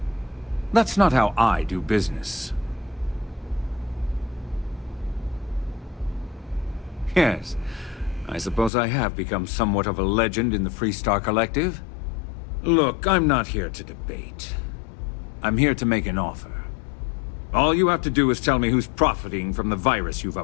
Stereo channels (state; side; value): drops out; right; at 8.7 s